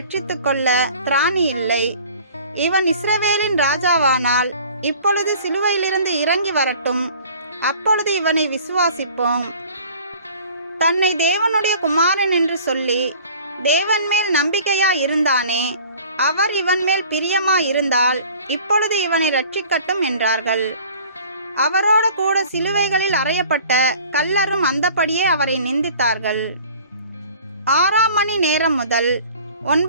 கொள்ள திராணி இல்லை. இவன் இஸ்ரவேலின் ராஜாவானால் இப்பொழுது சிலுவையிலிருந்து இறங்கி வரட்டும், அப்பொழுது இவனை விசுவாசிப்போம். தன்னை தேவனுடைய குமாரன் என்று சொல்லி தேவன் மேல் நம்பிக்கையா இருந்தானே, அவர் இவன் மேல் பிரியமா இருந்தால் இப்பொழுது இவனை ரட்சிக்கட்டும் என்றார்கள். அவரோடு கூட சிலுவைகளில் அறையப்பட்ட கள்ளரும் அந்தபடியே அவரை நிந்தித்தார்கள். 6ஆம் மணி நேரம் முதல்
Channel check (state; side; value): inverted; both; correlation -0.48